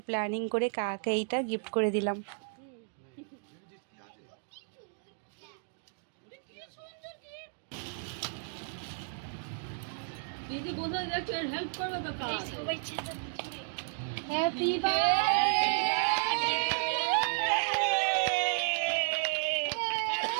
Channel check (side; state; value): left; silent; digital silence